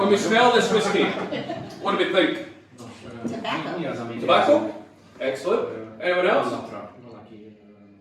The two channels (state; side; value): identical; both; correlation 1.00